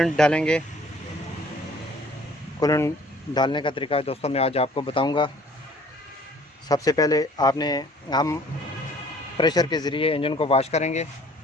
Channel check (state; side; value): normal; both; correlation 0.54